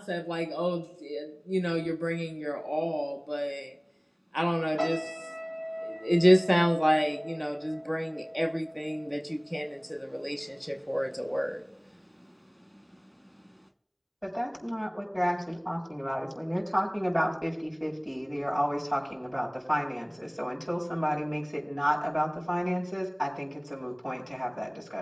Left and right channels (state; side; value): identical; both; correlation 1.00